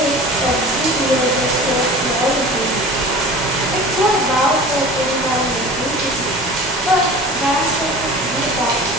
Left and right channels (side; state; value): both; normal; correlation 0.39